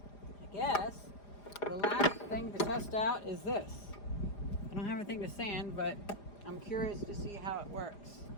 I guess the last thing to test out is this. I don't have anything to sand, but I'm curious to see how it works.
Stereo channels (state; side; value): late; right; 4.9 ms